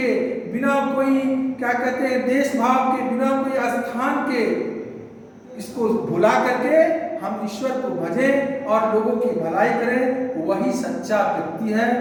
बिना कोई क्या कहते हैं देश भाव के, बिना कोई स्थान के, इसको भुला करके हम ईश्वर को भजें और लोगों की भलाई करें। वही सच्चा व्यक्ति है,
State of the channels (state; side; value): identical; both; correlation 1.00